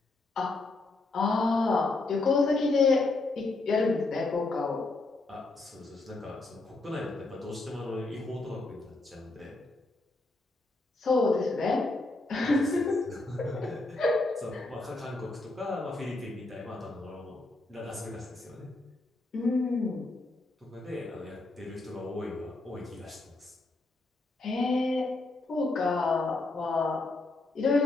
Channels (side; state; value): right; quieter; 3.2 dB